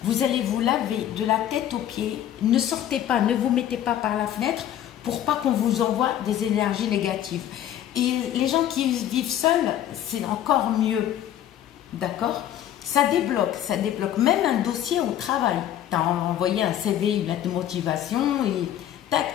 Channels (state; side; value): quieter; right; 11.3 dB